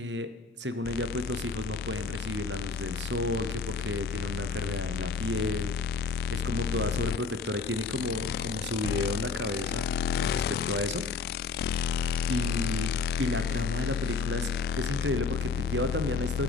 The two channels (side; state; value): right; quieter; 4.5 dB